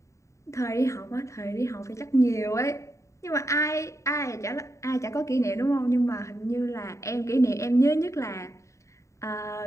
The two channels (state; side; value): late; right; 0.14 ms